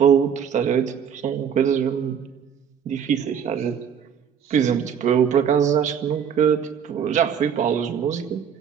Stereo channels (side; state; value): left; quieter; 7.8 dB